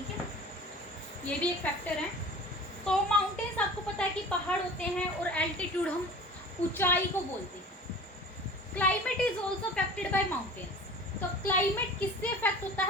है। ये भी एक फैक्टर है। तो माउंटेन्स आपको पता है कि पहाड़ होते हैं, और एल्टीट्यूड हम ऊंचाई को बोलते हैं। Climate is also affected by mountains. तो क्लाइमेट किससे अफेक्ट होता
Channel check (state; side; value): normal; both; correlation 0.41